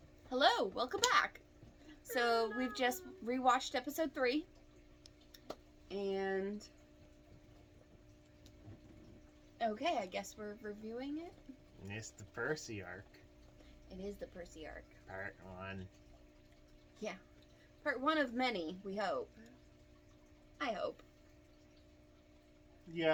Hello, welcome back. So we've just rewatched episode 3, and okay, I guess we're reviewing it. It's the Percy arc. It is the Percy arc. Part 1. Yeah, part 1 of many. We hope. I hope.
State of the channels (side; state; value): both; identical; correlation 1.00